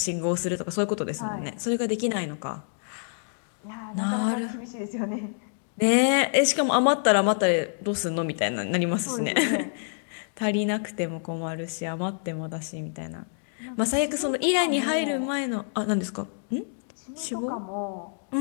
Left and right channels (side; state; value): right; silent; digital silence